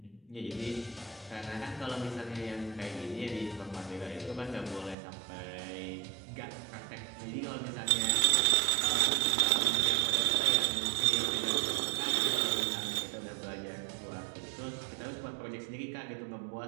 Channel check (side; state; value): left; drops out; at 5.0 s